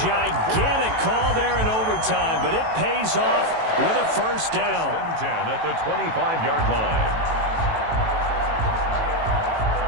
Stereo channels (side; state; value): left; late; 18 ms